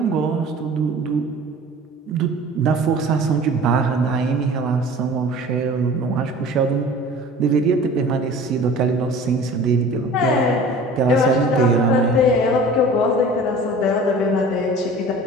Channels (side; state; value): both; normal; correlation 0.43